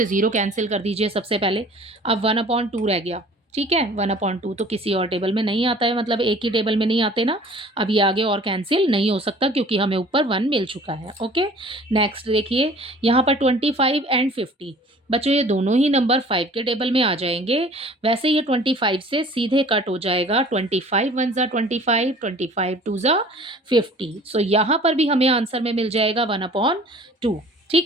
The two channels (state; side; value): normal; both; correlation 0.49